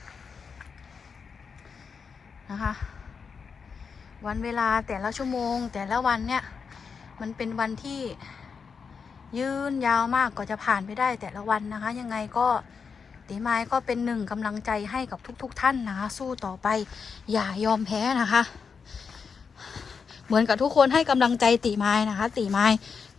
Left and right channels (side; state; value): right; quieter; 5.8 dB